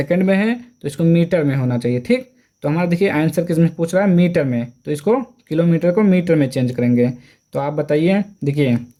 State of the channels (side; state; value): both; identical; correlation 1.00